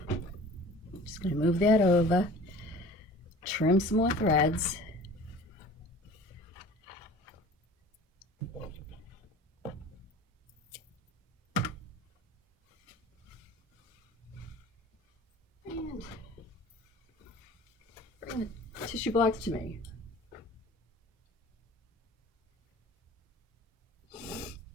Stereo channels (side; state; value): both; normal; correlation 0.44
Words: Just gonna move that over. Trim some more threads. And bring the tissue blocks to me.